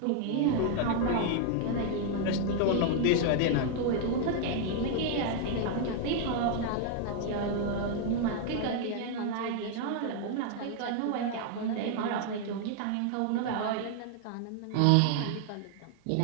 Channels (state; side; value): different; both; correlation 0.00